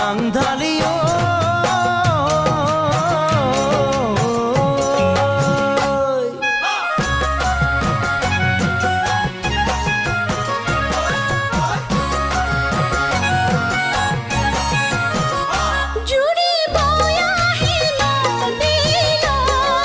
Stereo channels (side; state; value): both; identical; correlation 1.00